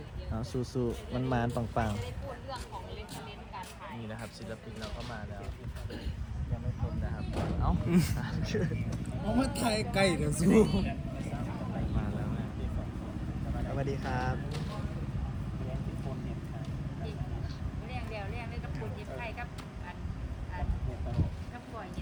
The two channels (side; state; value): both; identical; correlation 1.00